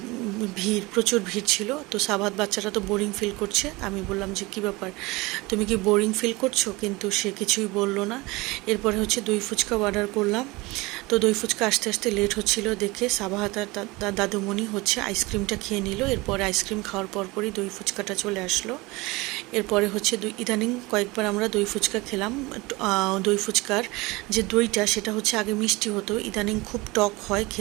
প্রচুর ভিড় ছিল। তো সাবাত বাচ্চারা তো বোরিং ফিল করছে। আমি বললাম যে কী ব্যাপার, তুমি কি বোরিং ফিল করছো? কিন্তু সে কিছুই বলল না। এরপরে দই ফুচকা অর্ডার করলাম। তো দই ফুচকা আসতে আসতে লেট হচ্ছিল দেখে সাবাহাত আর দাদুমণি আইসক্রিমটা খেয়ে নিল। এরপরে আইসক্রিম খাওয়ার পরপরই দই ফুচকাটা চলে আসলো। এরপরে ইদানিং কয়েকবার আমরা দই ফুচকা খেলাম। দই ফুচকার যে দইটা, সেটা আগে মিষ্টি হতো, ইদানিং খুব টক হয়,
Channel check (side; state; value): left; quieter; 22.9 dB